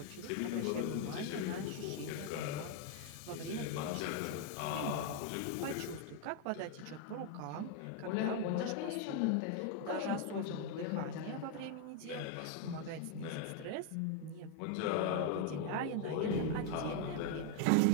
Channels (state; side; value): different; both; correlation 0.00